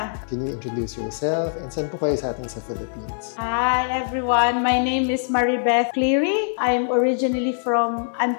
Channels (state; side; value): silent; right; 58 dB below the other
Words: Can you introduce yourself? And saan po kayo sa atin sa Philippines? Hi, everyone! My name is Maribeth Cleary. I'm originally from